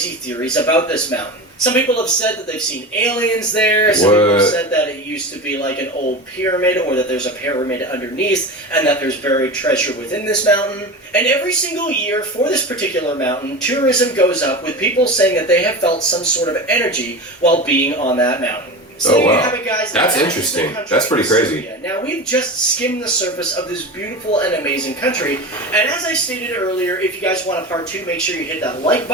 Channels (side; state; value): both; normal; correlation 0.28